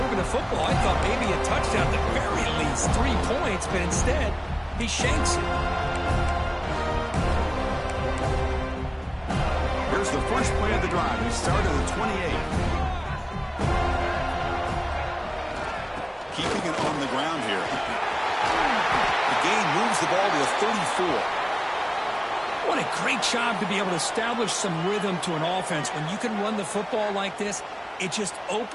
moving the football, I thought maybe a touchdown, at the very least 3 points, but instead, he shanks it. Here's the first play of the drive. He started at 28. Keeping it on the ground here. The gain moves the ball to the 34. What a great job to be able to establish some rhythm to an offense. When you can run the football like this, it just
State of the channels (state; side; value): identical; both; correlation 1.00